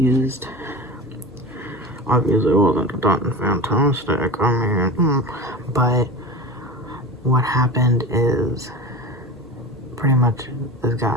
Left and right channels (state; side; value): normal; both; correlation 0.31